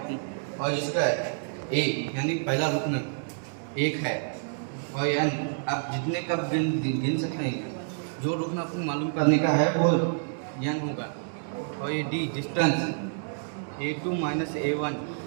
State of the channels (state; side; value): silent; left; digital silence